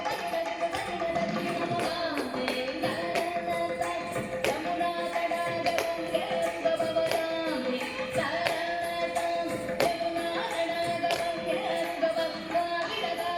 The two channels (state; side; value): identical; both; correlation 1.00